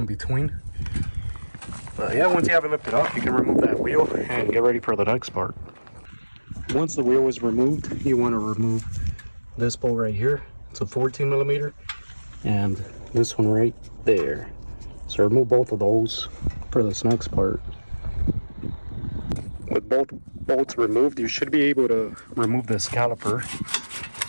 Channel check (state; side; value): inverted; both; correlation -1.00